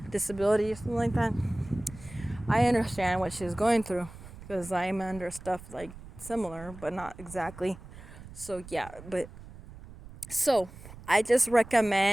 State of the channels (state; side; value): noise; right; rumble, 16 dB below the sound